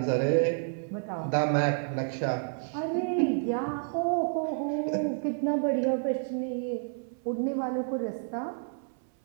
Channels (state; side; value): silent; left; 58 dB below the other